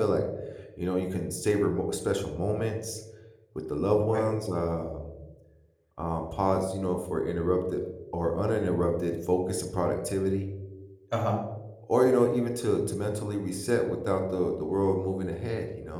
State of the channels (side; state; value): both; identical; correlation 1.00